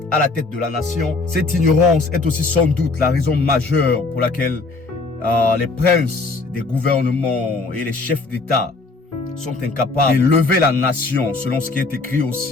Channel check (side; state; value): right; quieter; 3.7 dB